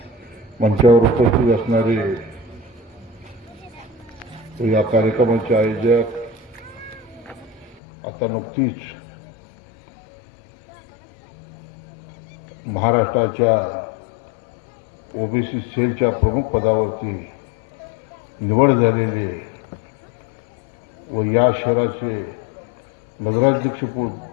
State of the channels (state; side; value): drops out; right; at 7.8 s